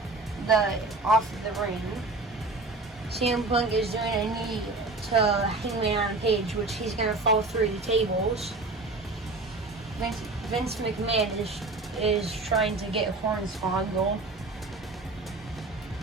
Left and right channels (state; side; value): quieter; left; 3.3 dB